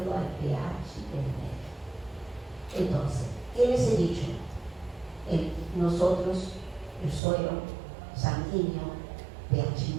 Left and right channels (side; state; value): left; drops out; at 7.2 s